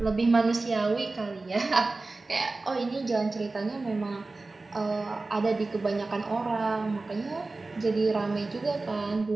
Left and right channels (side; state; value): left; quieter; 3.4 dB